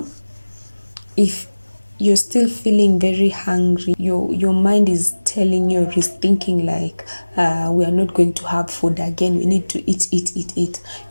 if you're still feeling very hungry, your mind is telling you, or is thinking like, we are not going to have food again, we need to eat.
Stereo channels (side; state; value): both; inverted; correlation -1.00